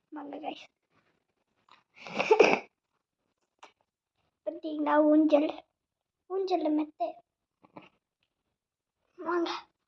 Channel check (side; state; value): both; identical; correlation 1.00